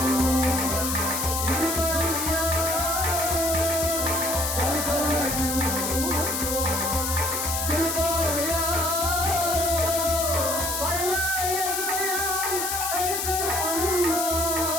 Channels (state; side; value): noise; left; hiss, 1 dB below the sound